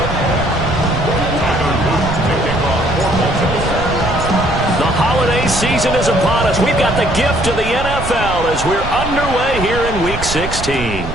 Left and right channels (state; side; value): noise; right; rumble, 7 dB below the sound